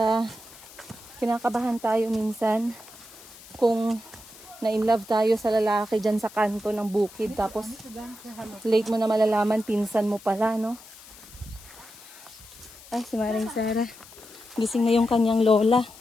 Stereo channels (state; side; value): noise; left; hiss, 20 dB below the sound